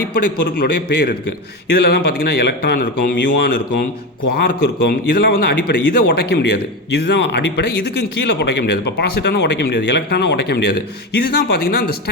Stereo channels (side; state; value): both; normal; correlation 0.18